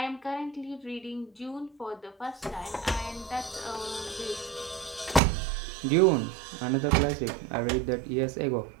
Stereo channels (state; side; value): drops out; left; at 5.2 s